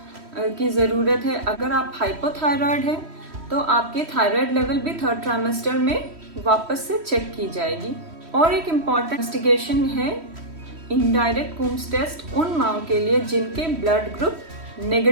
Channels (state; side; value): late; left; 3.1 ms